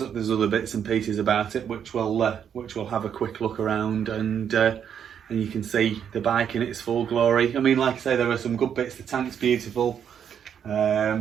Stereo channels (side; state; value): left; quieter; 8.4 dB